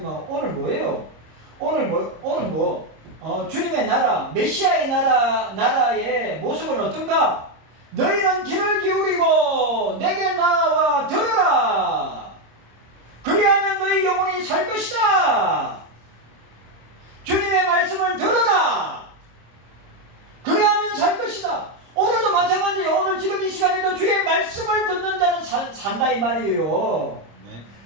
오늘 뭐예요? 주님의 나라, 메시아의 나라의 모습은 어떤가? 너희는 귀를 기울이고 내게 나와 들으라. 그리하면 너희 영혼이 살 것이다. 주님의 말씀을 들어라. 그리하면 살 것이다. 오늘도 마찬가지예요. 오늘 지금 이 시간에도 주의 말씀을 듣는 자는 산다 이 말이에요. 네.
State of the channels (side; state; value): left; late; 26 ms